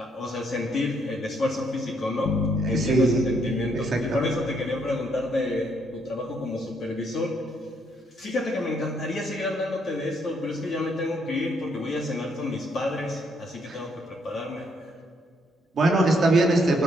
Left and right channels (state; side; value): normal; both; correlation 0.71